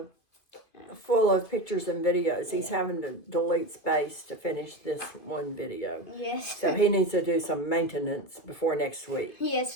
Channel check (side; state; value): right; late; 2.7 ms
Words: full of pictures and videos. He's having to delete space to finish this one video. Yes. So he needs to do some maintenance before next week.